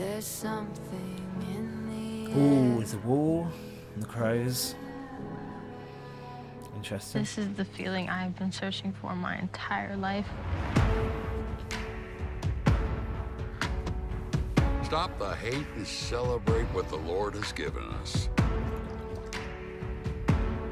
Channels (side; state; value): both; identical; correlation 1.00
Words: something in the Ooh, it's a wall and the crows. Interesting. This is the feeling I've been searching for my entire life. Stop the hate and celebrate what the Lord has given us.